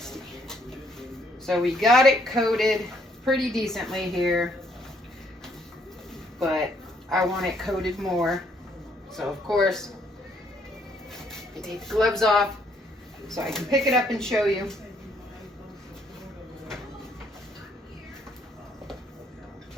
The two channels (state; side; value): normal; both; correlation 0.68